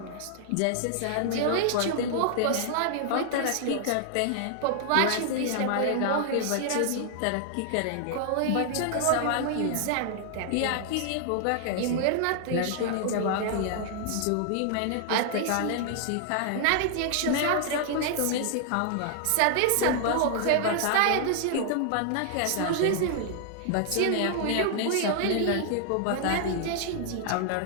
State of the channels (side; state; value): both; different; correlation 0.00